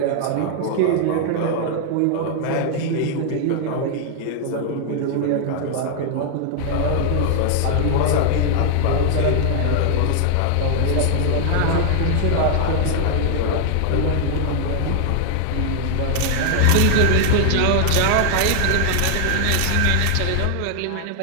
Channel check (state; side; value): different; both; correlation 0.00